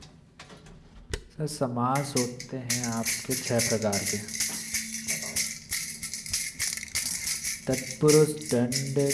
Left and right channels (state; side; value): identical; both; correlation 1.00